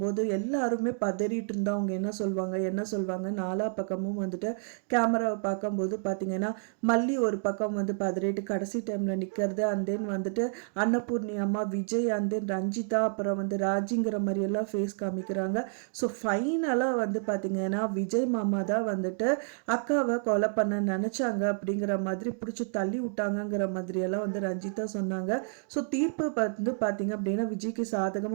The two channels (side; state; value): left; silent; 58 dB below the other